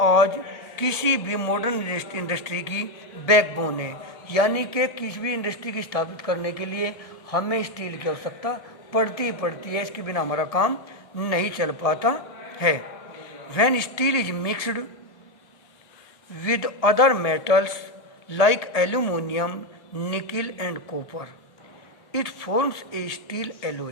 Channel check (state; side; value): late; right; 1.7 ms